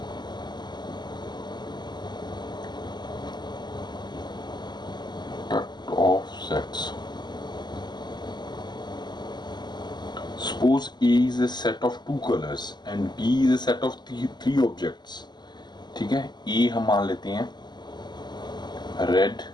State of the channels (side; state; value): right; late; 0.21 ms